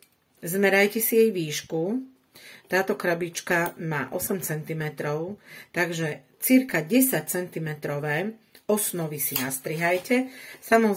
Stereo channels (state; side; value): identical; both; correlation 1.00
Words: zmerajte si jej výšku. Táto krabička má 8 cm, takže cirka 10 cm osnovy si nastrihajte.